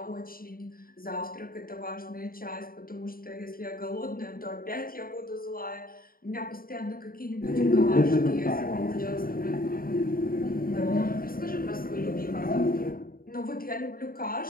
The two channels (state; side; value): late; right; 0.42 ms